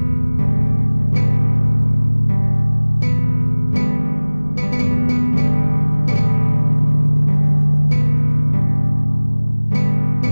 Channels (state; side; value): inverted; both; correlation -1.00